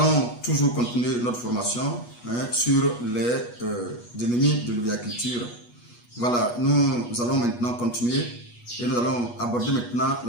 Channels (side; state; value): right; late; 8.3 ms